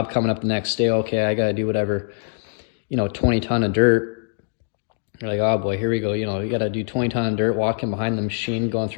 coming up the next day. Okay, I got to do whatever, 20 ton of dirt. You're like, oh boy, here we go. You got to do 20 ton of dirt, walking behind the machine, going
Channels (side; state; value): right; silent; digital silence